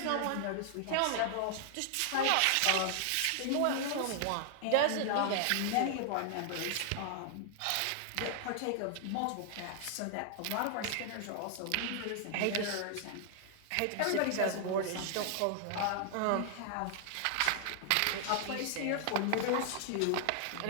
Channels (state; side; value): different; both; correlation -0.01